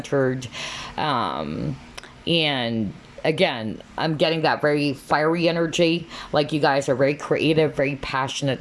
And again, I'm getting that very fiery energy. Like you guys are very creative, very passionate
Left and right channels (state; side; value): identical; both; correlation 1.00